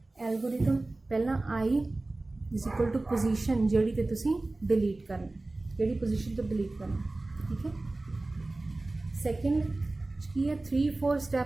एल्गोरिथम, पहला आई इज इक्वल टू पोजीशन जिहड़ी ते तुसी डिलीट करना, जिहड़ी पोजीशन तो डिलीट करना, ठीक है। सैकेंड की है 3-4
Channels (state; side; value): quieter; left; 3.0 dB